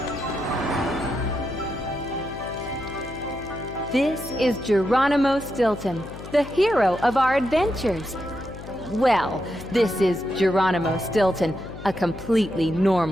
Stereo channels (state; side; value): noise; left; hum, 13 dB below the sound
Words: This is Geronimo Stilton, the hero of our adventures. Well, this is Geronimo Stilton, a completely